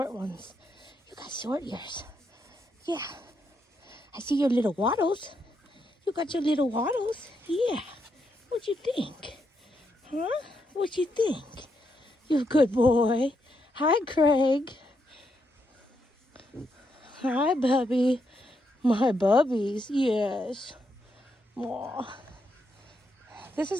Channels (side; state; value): both; normal; correlation 0.80